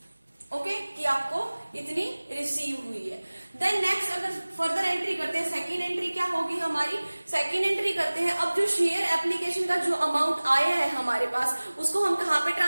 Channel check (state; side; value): inverted; both; correlation -1.00